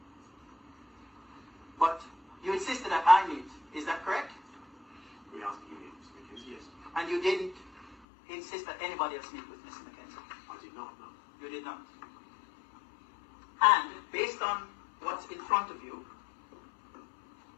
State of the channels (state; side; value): drops out; right; at 8.0 s